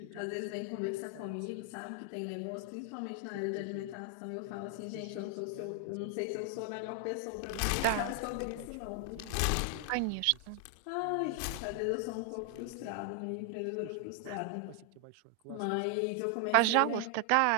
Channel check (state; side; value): different; both; correlation 0.00